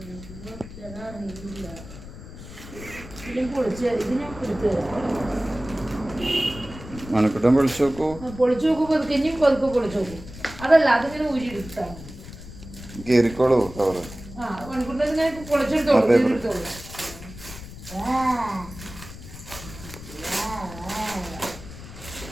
പൊളിച്ച് ഇത് ഞാൻ എടുത്ത് മണക്കുട്ടൻ പൊളിച്ചു നോക്കൂ. പൊളിച്ചു നോക്കൂ, പതുക്കെ ഇനിയും പതുക്കെ പൊളിച്ചു നോക്കൂ. അതല്ല അതിങ്ങനെ ഊരി എടുത്താണ്. കീറിക്കോളൂ കവറ്. ആ മണിക്കൂറിനെ പൊളിച്ചെടുത്തോളൂ, എടുത്തോളൂ.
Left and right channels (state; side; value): noise; left; rumble, 14 dB below the sound